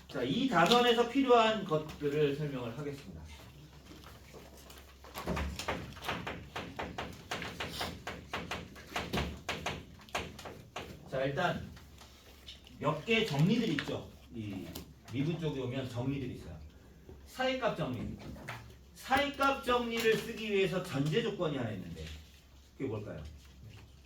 자, 이 단원에서 필요한 것들을 설명을 하겠습니다. 자, 일단 몇 개 정리들이 있죠. 이 미분 쪽에 오면 정리들이 있어요. 사이값 정리. 사이값 정리를 쓰기 위해서 전제 조건이 하나 있는데 그게 뭘까요?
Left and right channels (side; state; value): both; identical; correlation 1.00